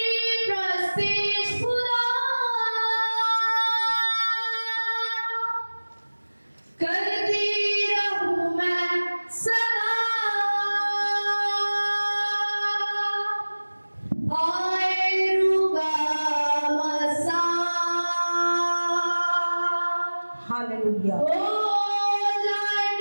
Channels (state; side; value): inverted; both; correlation -1.00